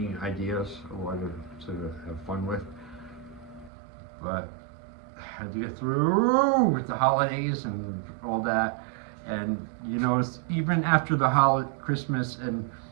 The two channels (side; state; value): left; drops out; at 3.7 s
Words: ideas I want to have fun with. But I had to get through with the holidays and all that, and even after the Christmas and